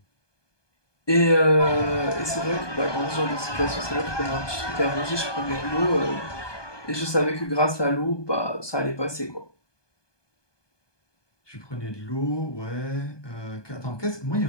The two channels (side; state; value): right; late; 1.2 ms